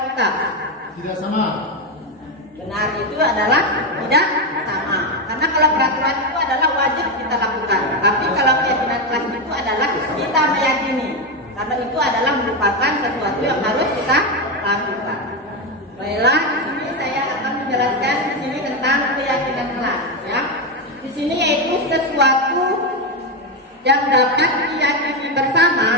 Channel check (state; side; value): normal; both; correlation 0.10